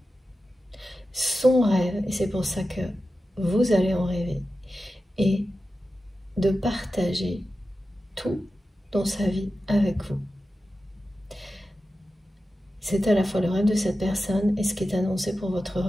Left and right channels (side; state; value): both; normal; correlation 0.92